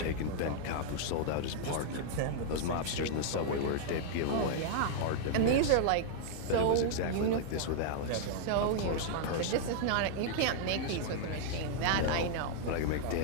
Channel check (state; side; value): different; both; correlation -0.01